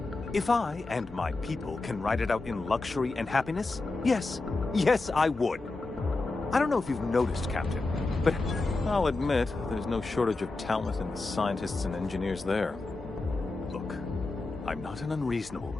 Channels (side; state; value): right; quieter; 3.3 dB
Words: If I and my people can ride it out in luxury and happiness, yes, I would. I don't know if you've noticed, Captain, but I'll admit there's no shortage of talent in the scientists and engineers there. Look, I'm not an unreasonable